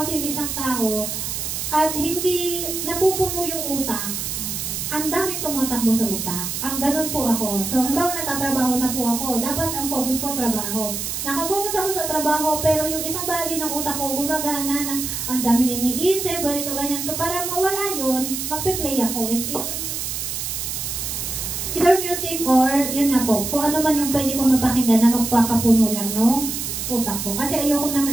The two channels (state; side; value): noise; right; hiss, 4 dB below the sound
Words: yung isang tao at hindi napupuno yung utak, ang daming tumatakbo sa utak. Ang ganun po ako. So, halimbawa nagtatrabaho na po ako, dapat ang focus ko trabaho. Nakapokus ako sa trabaho, pero yung isang bahagi ng utak ko, gumagana na ang daming iniisip, ganito, ganyan. So, para mawala yun, magpe-play ako. Either music or, yun na po, kung ano man yung pwede kong mapakinggan na magpakapuno lang, no? Utak ko. Kasi ayoko na